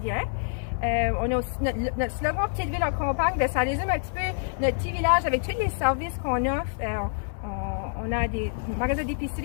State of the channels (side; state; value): right; silent; 60 dB below the other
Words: On a aussi notre slogan Petite ville en campagne, ben ça résume un petit peu notre petit village avec tous les services qu'on offre. On a des magasins